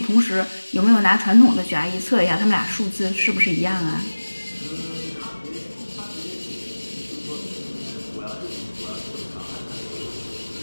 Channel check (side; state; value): both; inverted; correlation -1.00